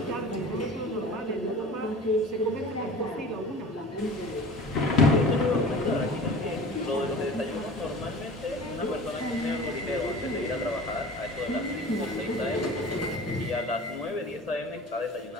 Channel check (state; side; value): normal; both; correlation 0.40